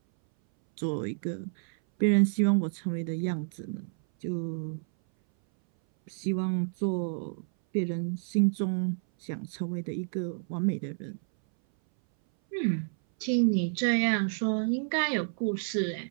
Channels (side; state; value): left; silent; 58 dB below the other